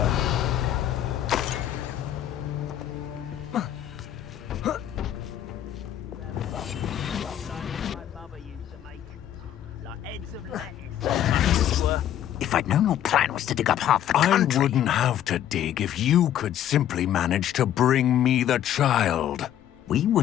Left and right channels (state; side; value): quieter; right; 11.1 dB